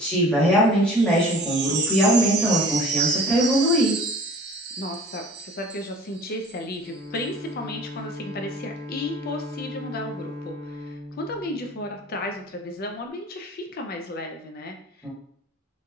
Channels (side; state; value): both; normal; correlation 0.45